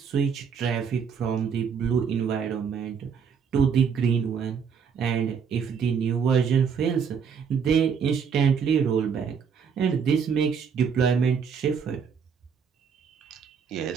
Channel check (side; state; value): left; quieter; 6.7 dB